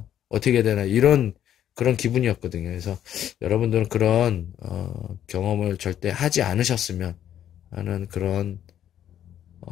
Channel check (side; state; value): right; quieter; 10.6 dB